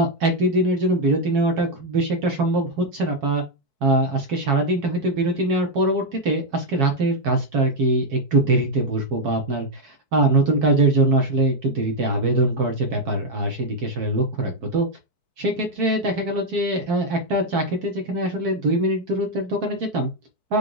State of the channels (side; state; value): left; late; 4.6 ms